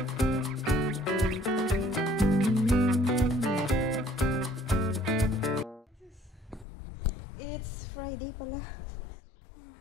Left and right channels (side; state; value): right; drops out; at 6.7 s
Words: It's Friday pala.